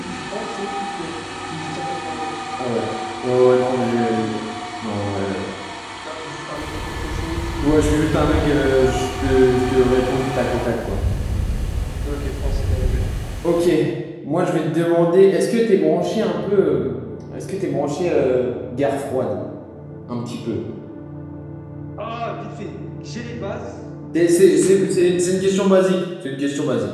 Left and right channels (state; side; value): identical; both; correlation 1.00